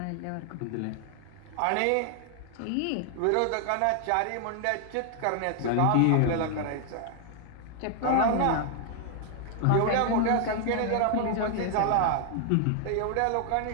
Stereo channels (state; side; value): different; both; correlation 0.00